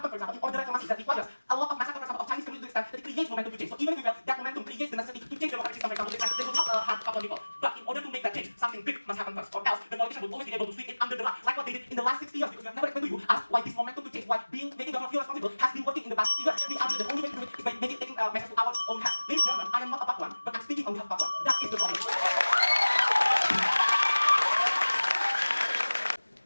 for example, in order reclamation that requires a lot of massacre, for example, of Chinese communities that it creates momentum to change. So even if we fail, that momentum creates the necessity to change the democratic system, for example, they will not have a couple of people. But in order to make that change, something big must happen first, or else the politician will always be able to sweep it under the rug, like what they did in the last 60 years, because we have never explained to you as why this momentum to change, why making government feel responsible has been working in the past 60 years. We argue that the only way to do it is by taking measures to our own hands. Ladies and gentlemen, I am not a part one, but I'm speaking on behalf of part one. That is the problem.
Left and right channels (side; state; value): both; inverted; correlation -1.00